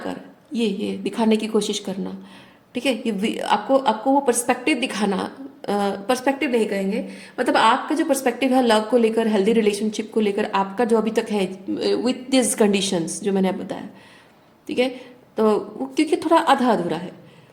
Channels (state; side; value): identical; both; correlation 1.00